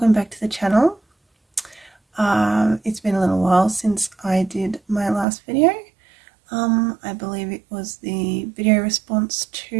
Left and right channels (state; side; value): drops out; left; at 5.2 s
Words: back to the channel. It's been a little while since I did my last video. I believe it was the video response